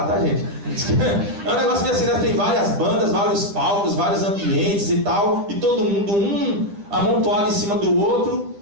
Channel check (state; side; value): late; left; 10 ms